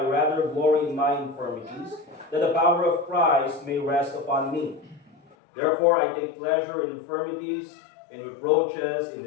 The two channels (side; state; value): right; drops out; at 5.2 s